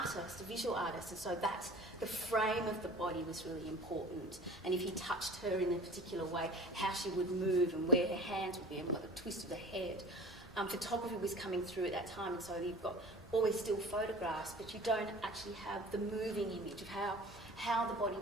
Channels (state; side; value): normal; both; correlation 0.42